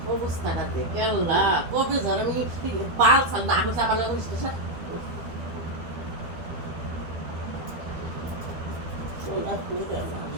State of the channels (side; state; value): left; late; 12 ms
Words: অবস্থাটা দেখে আল্লাহ কবে ধর আমি পাল না চাপালে সোনা করে